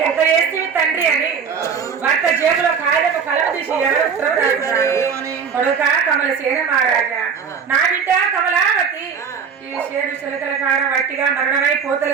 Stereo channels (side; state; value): left; quieter; 6.4 dB